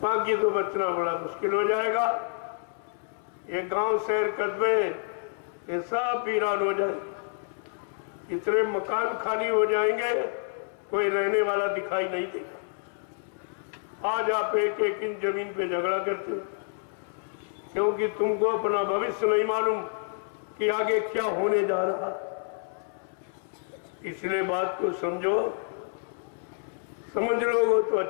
बाकी तो बचना बड़ा मुश्किल हो जाएगा। ये गांव शहर कस्बे ये सब वीरान हो जाएंगे, इतने मकान खाली हो जाएंगे, कोई रहने वाला दिखाई नहीं देगा। आज आप एक एक इंच जमीन पे झगड़ा करते हो, क्योंकि तुमको अपना भविष्य नहीं मालूम कि आगे क्या होने जा रहा। इसलिए बात को समझो, समझ लोगे तो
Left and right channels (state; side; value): silent; right; 59 dB below the other